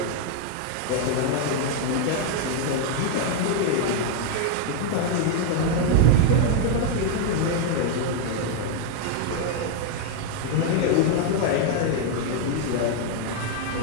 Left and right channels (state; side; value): different; both; correlation 0.00